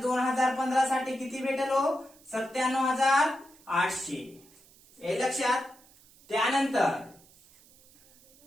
2015 साठी किती भेटेल हो 97,800. हे लक्षात. त्यानंतर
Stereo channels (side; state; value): right; noise; hiss, 27 dB below the sound